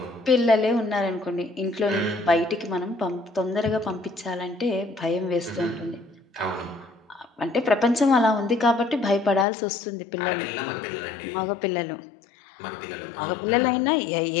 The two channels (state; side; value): drops out; right; at 9.5 s